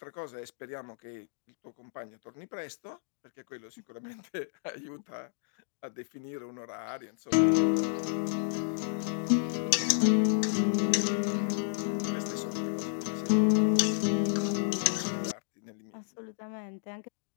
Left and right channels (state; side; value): silent; right; digital silence